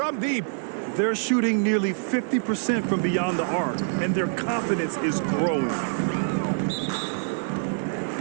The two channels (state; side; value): silent; left; 61 dB below the other